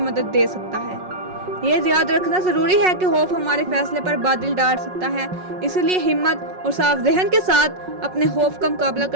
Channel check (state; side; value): late; left; 5.4 ms